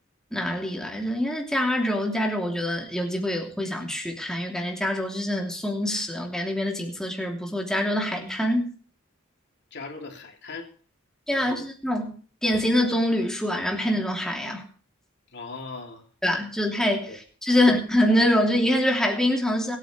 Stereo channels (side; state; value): both; normal; correlation 0.79